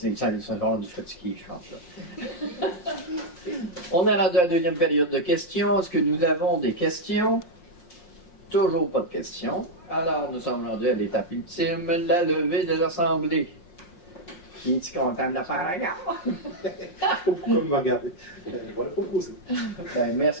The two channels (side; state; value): right; late; 5.6 ms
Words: sont rendus fatigués, je pense. Là. On est rendu à la deuxième période de questions. Est-ce que nous avons des questions? Toujours pas de questions. Alors, nous sommes rendus à l'étape ultime, la levée de l'Assemblée. Qui est-tu content de le faire encore? Pourquoi me regarder? Voilà, proposer. Ben,